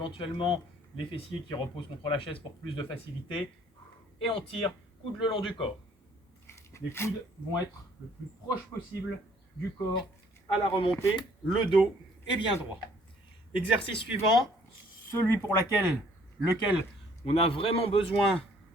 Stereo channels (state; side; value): normal; both; correlation 0.60